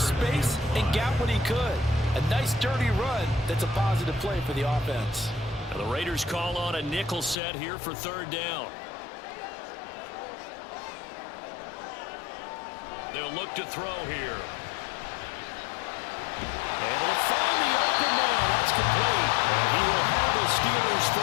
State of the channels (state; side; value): drops out; right; at 7.4 s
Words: space and got what he could. A nice dirty run that's a positive play for the offense. Now the Raiders call on a nickel set here for 3rd down. They'll look to throw here. Able to find the open man. That's complete. And he will have a Steelers